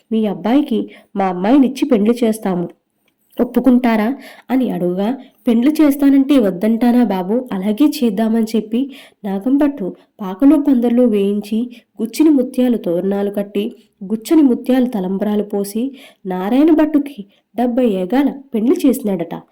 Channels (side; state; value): both; identical; correlation 1.00